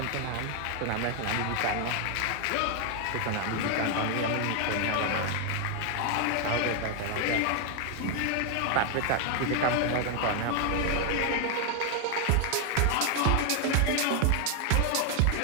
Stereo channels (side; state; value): both; different; correlation 0.00